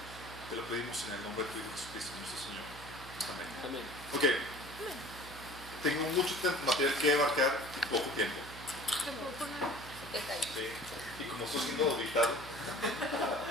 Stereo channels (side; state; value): right; noise; hum, 15 dB below the sound